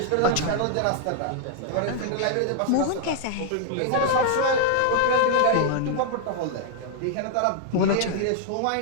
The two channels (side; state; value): both; different; correlation 0.00